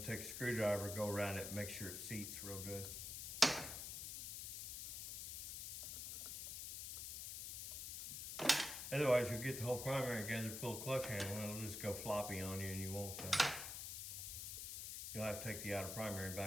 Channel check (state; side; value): noise; left; hiss, 5 dB below the sound